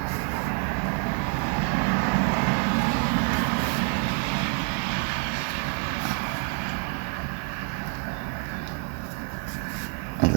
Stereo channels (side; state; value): left; quieter; 35.9 dB